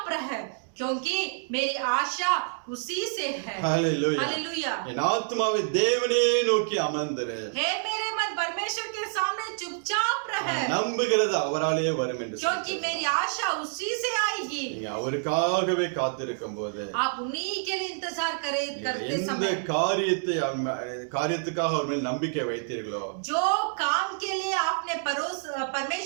रह, क्योंकि मेरी आशा उसी से है। ஹalleluya. हालेलुया। என் ஆத்துமாவை தேவனே நோக்கி அமர்ந்திரு. हे मेरे मन परमेश्वर के सामने चुपचाप रह, நம்புகிறது அவராலே வரும் என்று क्योंकि मेरी आशा उसी से आएगी। நீங்க அவருக்காகவே காத்திருக்கும் போது आप उन्हीं के लिए इंतजार करते எந்த समय காரியத்துக்காக அவர் மேல் நம்பிக்கை வைத்தீர்களோ जो काम के लिए आपने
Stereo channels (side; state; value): left; silent; digital silence